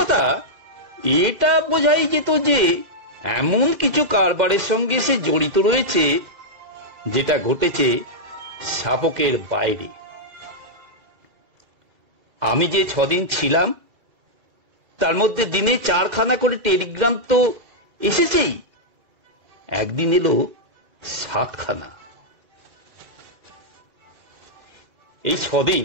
এটা বোঝাই যেত যে এমন কিছু কারবারের সঙ্গে সে জড়িত রয়েছে যেটা ঘটেছে শাবকের বাইরে। আমি যে 6 দিন ছিলাম তার মধ্যে দিনে 4খানা করে টেলিগ্রাম তো এসেছেই, একদিন এলো 7খানা। এই 6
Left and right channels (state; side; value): late; left; 2.1 ms